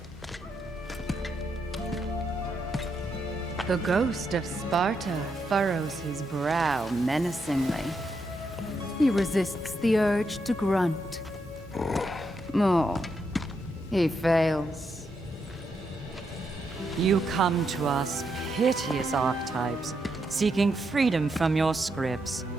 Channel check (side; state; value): both; normal; correlation 0.81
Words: The ghost of Sparta furrows his brow menacingly. He resists the urge to grunt. Oh, he fails. You come to us, piteous archetypes, seeking freedom from your scripts,